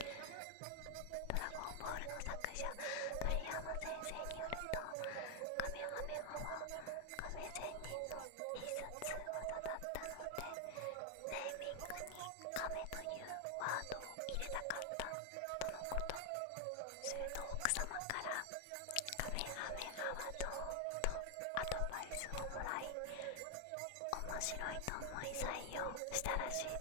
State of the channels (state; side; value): different; both; correlation 0.00